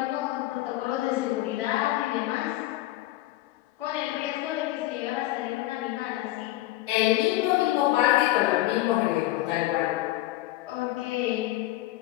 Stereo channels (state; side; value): quieter; right; 16.5 dB